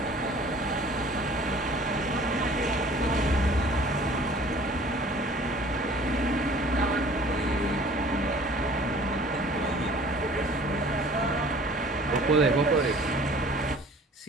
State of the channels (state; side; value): normal; both; correlation 0.50